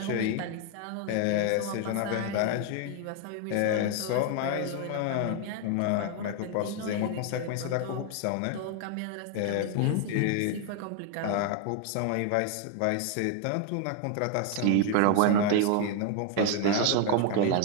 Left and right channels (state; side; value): different; both; correlation 0.01